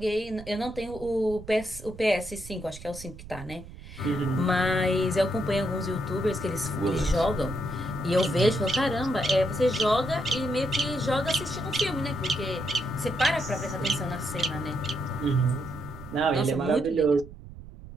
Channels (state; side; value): noise; right; rumble, 15 dB below the sound